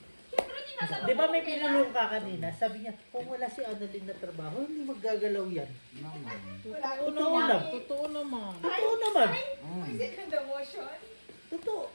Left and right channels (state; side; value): inverted; both; correlation -1.00